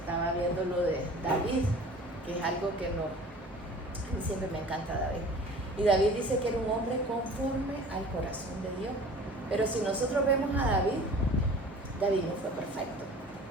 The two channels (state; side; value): normal; both; correlation 0.45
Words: viendo lo de David, que es algo que no... A mí siempre me encanta David. Y David dice que era un hombre conforme al corazón de Dios. Pero si nosotros vemos a David, David no fue perfecto.